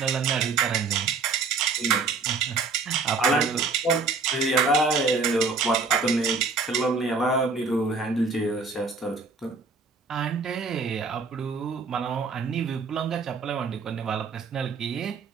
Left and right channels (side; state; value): left; quieter; 4.4 dB